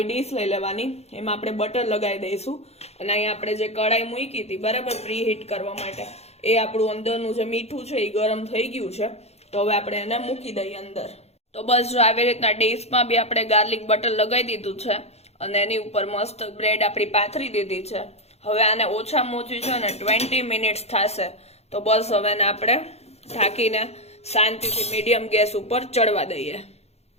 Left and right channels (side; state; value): right; late; 0.31 ms